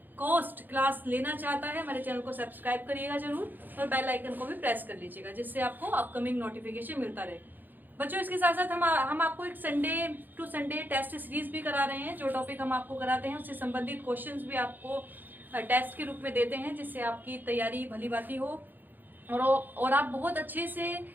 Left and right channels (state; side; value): late; left; 0.088 ms